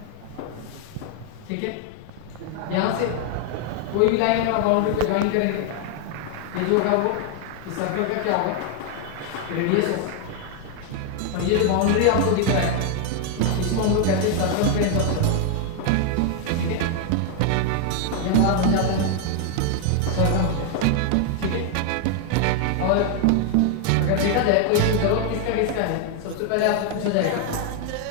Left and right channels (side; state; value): both; different; correlation 0.00